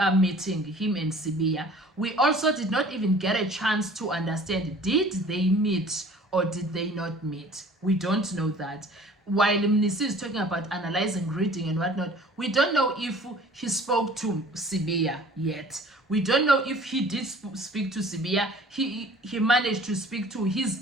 meeting him and Sibiya. We also did not even get a chance to understand, did they meet or did they not meet? We don't know that. While Mnisi is talking about analyzing, reading and whatnot, we don't know if he spoke to Sibiya yet. We don't know if he did speak to Sibiya. He managed to speak to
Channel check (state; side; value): normal; both; correlation 0.49